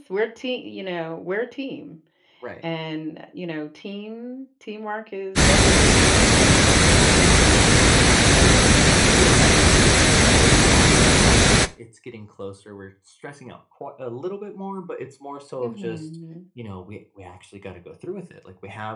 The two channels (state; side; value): identical; both; correlation 1.00